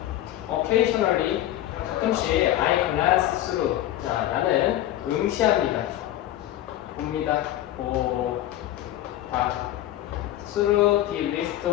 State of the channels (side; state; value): right; quieter; 13.6 dB